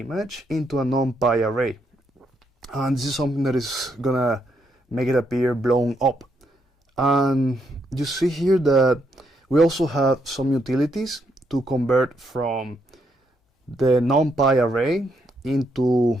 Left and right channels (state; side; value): normal; both; correlation 0.77